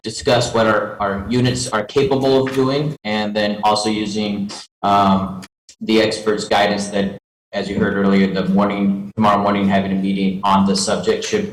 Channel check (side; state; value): both; identical; correlation 1.00